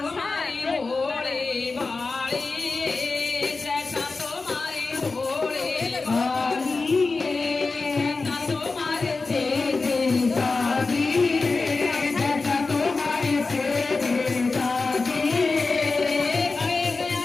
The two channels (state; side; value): quieter; right; 3.9 dB